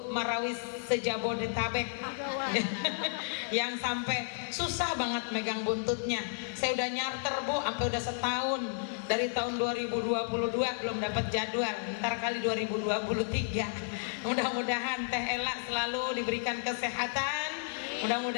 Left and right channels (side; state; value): right; silent; digital silence